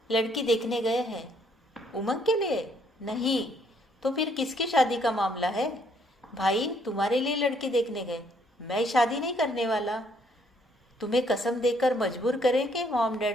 लड़की देखने गए हैं। उमंग के लिए? नहीं, तो फिर किसकी शादी का मामला है? भाई तुम्हारे लिए लड़की देखने गए, मैं शादी नहीं करने वाला। तुम्हें कसम देकर मजबूर करेंगे मॉम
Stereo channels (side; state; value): both; normal; correlation 0.68